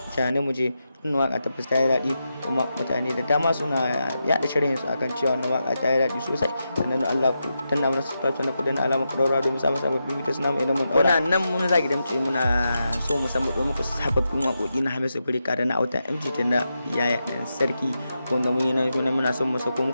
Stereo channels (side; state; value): both; inverted; correlation -0.87